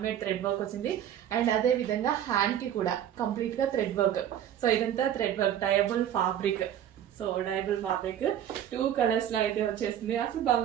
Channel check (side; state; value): left; quieter; 10.3 dB